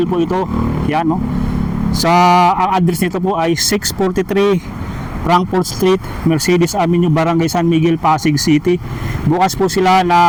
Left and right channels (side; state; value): both; identical; correlation 1.00